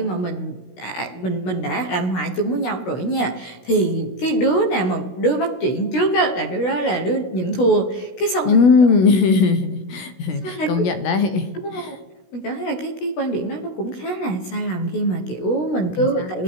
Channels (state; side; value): late; right; 16 ms